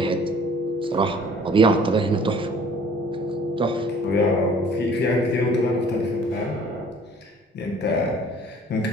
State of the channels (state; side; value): normal; both; correlation 0.52